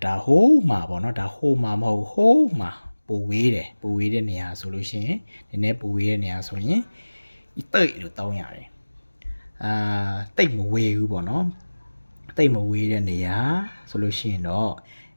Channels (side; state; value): both; inverted; correlation -1.00